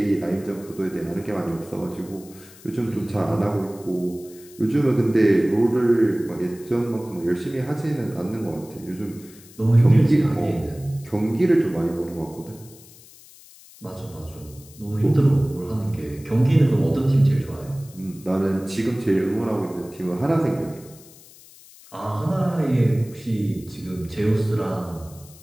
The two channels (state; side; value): noise; left; hiss, 22 dB below the sound